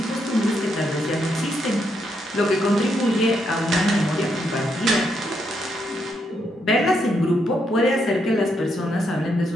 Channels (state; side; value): normal; both; correlation 0.78